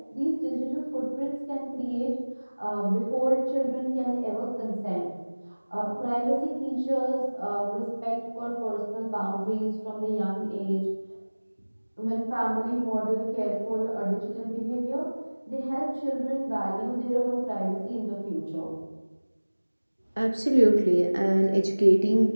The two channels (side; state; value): both; inverted; correlation -1.00